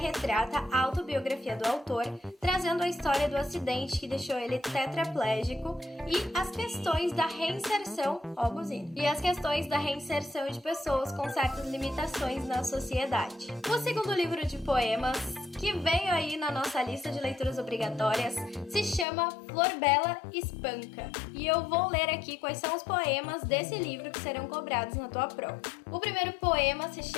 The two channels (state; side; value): drops out; right; at 19.1 s